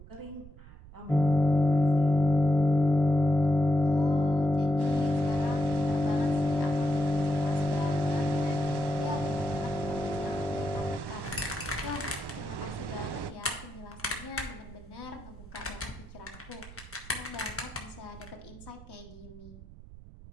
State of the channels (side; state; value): right; noise; rumble, 18 dB below the sound